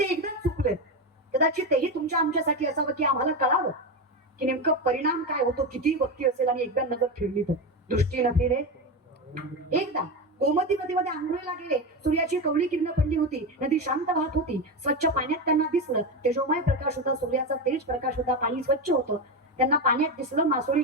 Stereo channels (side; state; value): both; normal; correlation 0.16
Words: एकदाच चुकलेत. कदाचित तेही तुमच्या आमच्यासाठी असावं की आम्हाला कळावं की नेमकं परिणाम काय होतो किती भक्ती असेल आणि एकदा नजर फिरली तर. दृष्टी न फिरे एकदा. गोमती नदीमध्ये आंघोळीला गेले. सूर्याची कवळी किरण पडली होती. नदी शांत वाहत होती. स्वच्छ पाण्यात त्यांना दिसलं. तेजोमय प्रकाश होता. सूर्याचा तेज प्रकाश होता. पाणी स्वच्छ होतं. त्यांना पाण्यात दिसलं.